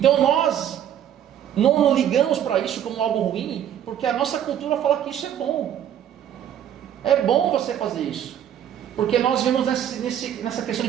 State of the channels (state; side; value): quieter; left; 10.2 dB